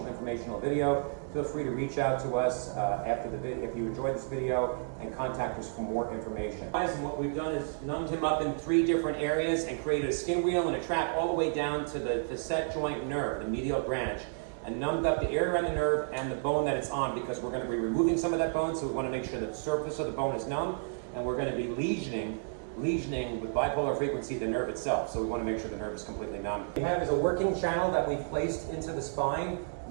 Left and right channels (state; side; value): silent; left; digital silence